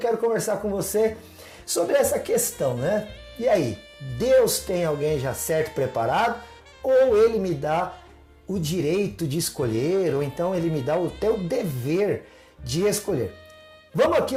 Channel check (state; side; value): identical; both; correlation 1.00